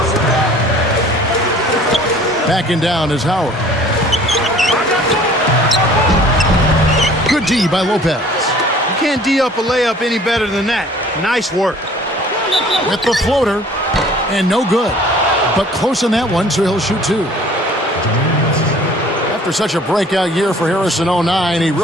Backing down is Howard. D by Lopez. You can't D up a layup any better than that. Nice work. With the floater, and no good. But close on that one, so he'll shoot 2. After such a breakout year for Harris in 09, he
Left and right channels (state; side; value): normal; both; correlation 0.51